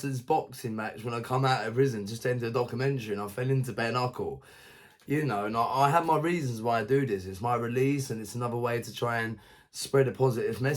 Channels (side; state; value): both; identical; correlation 1.00